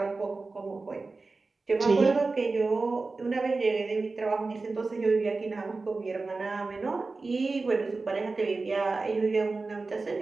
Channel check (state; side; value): quieter; left; 3.8 dB